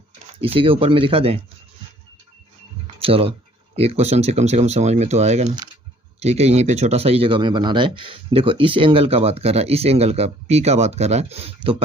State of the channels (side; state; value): both; normal; correlation 0.58